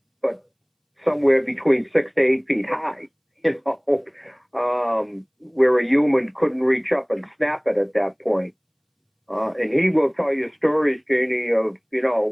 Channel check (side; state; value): both; identical; correlation 1.00